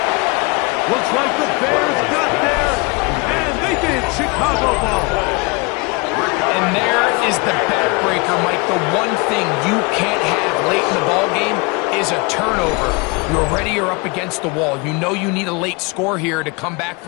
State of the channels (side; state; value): right; quieter; 28.7 dB